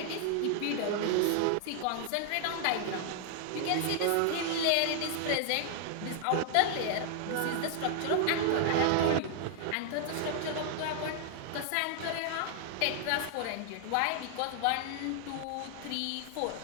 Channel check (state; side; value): different; both; correlation 0.00